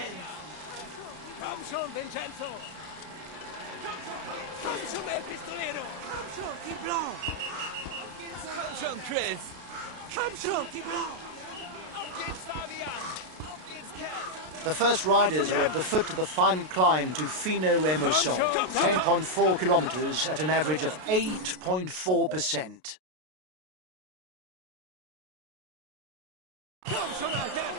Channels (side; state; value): left; late; 33 ms